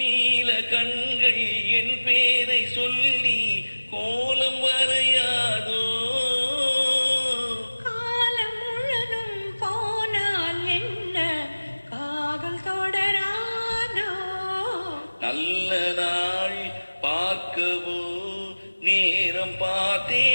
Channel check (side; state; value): both; inverted; correlation -1.00